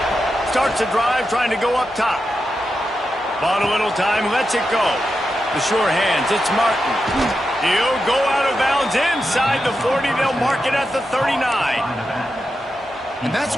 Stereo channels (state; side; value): normal; both; correlation 0.88